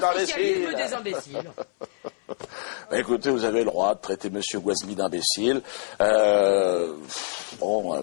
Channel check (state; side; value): silent; right; 62 dB below the other